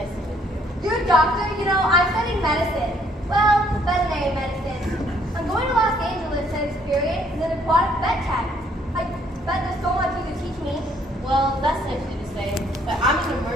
to meet you. You're a doctor? You know, I'm studying medicine. Well, veterinary medicine. I'm going to Los Angeles to experience an aquatic vet tech. I bet there's so much you could teach me. Well, that's nice of you to say, but I'm an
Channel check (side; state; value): both; normal; correlation 0.65